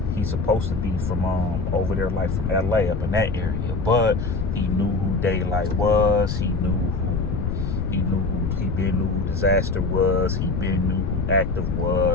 He's supposed to be from over there, like from LA, up in that area. But he knew who Daylight was. He knew who Disaster was. He knew who Active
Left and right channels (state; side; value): noise; left; rumble, 2 dB below the sound